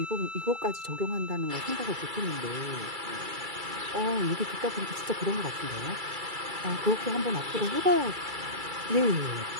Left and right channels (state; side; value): late; left; 2.3 ms